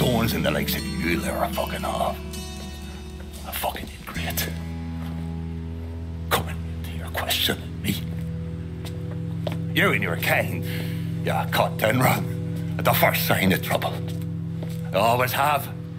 in the likes of you there are fucking off. A fucking ingrate. Coming to your question, me. You and your kind, you cut and run at the first sign of trouble. You always have,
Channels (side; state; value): both; identical; correlation 1.00